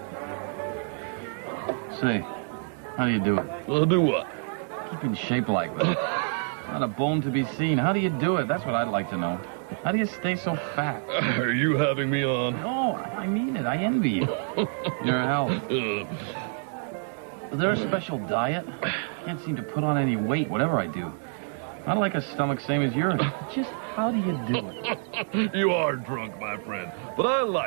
Say, how do you do it? Do what? Keep in shape like that. Not a bone to be seen. How do you do it? That's what I'd like to know. How do you stay so fat? Are you having me on? No, I mean it. I envy you. Your health. Is there a special diet? I can't seem to put on any weight, whatever I do. Not like a stomach same as yours. Just how do you do it? You are drunk, my friend, but I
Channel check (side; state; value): left; silent; 60 dB below the other